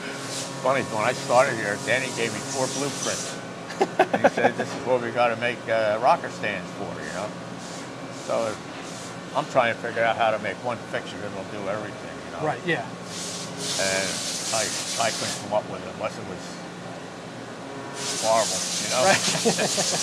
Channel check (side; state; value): both; identical; correlation 1.00